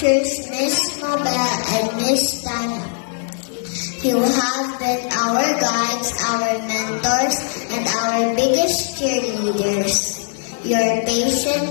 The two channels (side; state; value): right; silent; 65 dB below the other